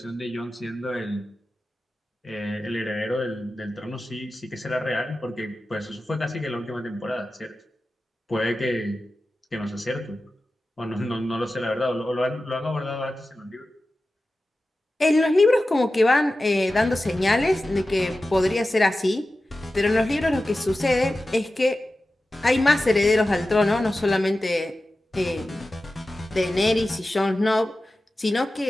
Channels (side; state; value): both; normal; correlation 0.94